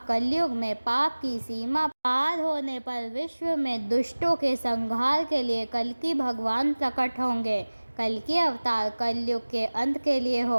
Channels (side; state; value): both; inverted; correlation -1.00